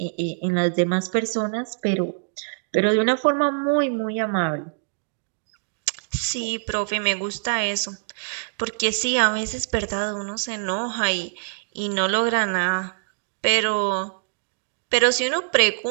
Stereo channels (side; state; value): left; silent; digital silence